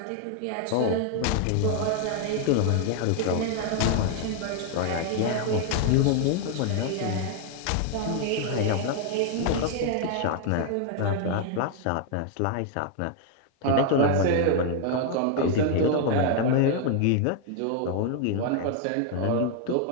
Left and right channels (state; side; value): different; both; correlation 0.00